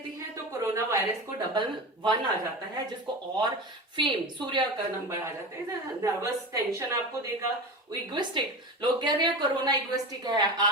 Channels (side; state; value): both; normal; correlation 0.27